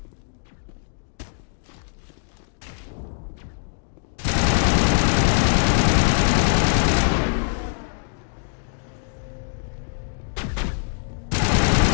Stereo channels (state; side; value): silent; right; digital silence